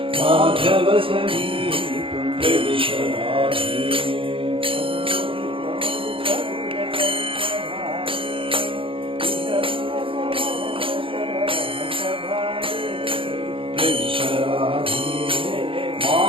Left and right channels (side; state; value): left; late; 0.26 ms